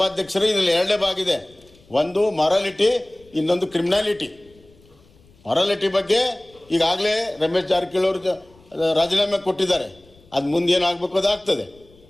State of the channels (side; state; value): left; noise; rumble, 29 dB below the sound